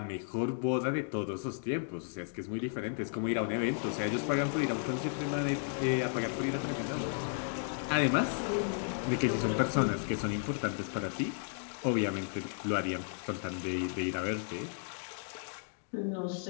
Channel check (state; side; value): silent; right; digital silence